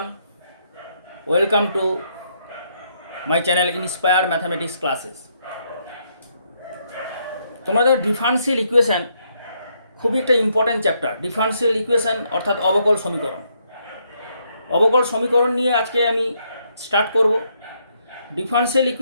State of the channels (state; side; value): inverted; both; correlation -0.74